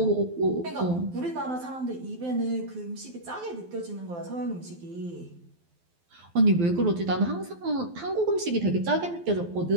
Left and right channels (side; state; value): left; late; 12 ms